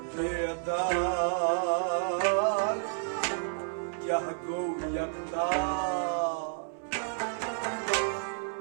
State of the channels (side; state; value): left; silent; 57 dB below the other